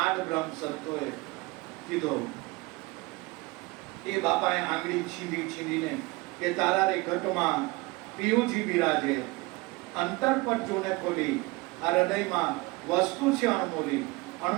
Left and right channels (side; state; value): left; quieter; 23.7 dB